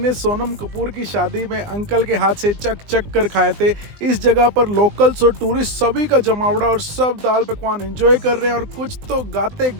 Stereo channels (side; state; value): left; late; 20 ms